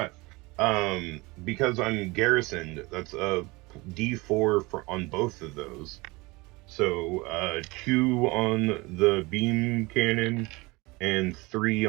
Because I'm garrisoned, that's a D4 on both of those. So 2 on the beam cannon and 3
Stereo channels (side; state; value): left; quieter; 23.7 dB